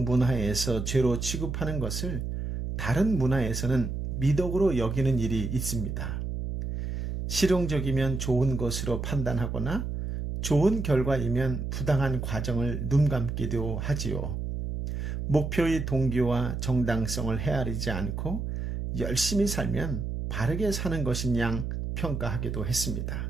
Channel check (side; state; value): right; noise; hum, 4 dB below the sound